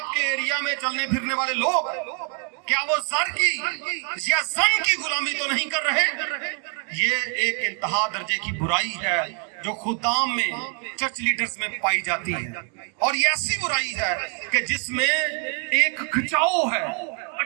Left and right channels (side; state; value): left; quieter; 37.9 dB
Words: एरिया में चलने फिरने वाले लोग क्या वो सर की या जन की गुलामी तो नहीं कर रहे। ये एक इंतहा दर्जे की बुराई है जो खुदाम में, चर्च लीडर्स में पाई जाती है। और ये ऐसी बुराई है कि जिसमें एक खिंचाव है,